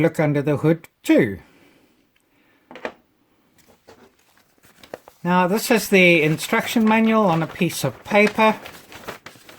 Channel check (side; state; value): both; identical; correlation 1.00